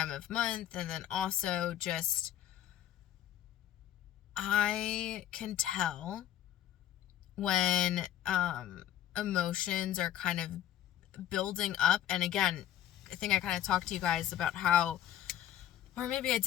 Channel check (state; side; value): quieter; right; 11.8 dB